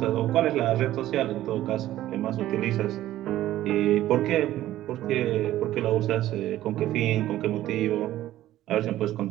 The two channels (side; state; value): left; quieter; 14.1 dB